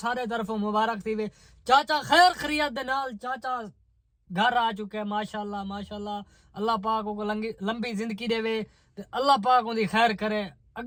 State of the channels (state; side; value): identical; both; correlation 1.00